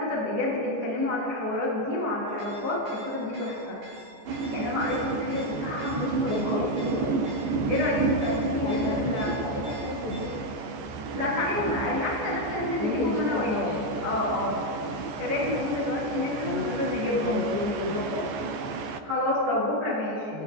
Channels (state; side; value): late; left; 14 ms